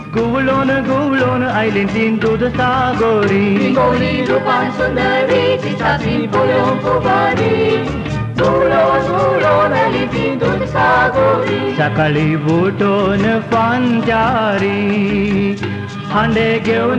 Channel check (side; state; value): both; identical; correlation 1.00